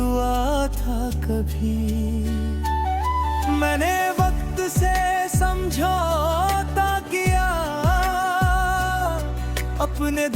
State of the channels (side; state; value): both; identical; correlation 1.00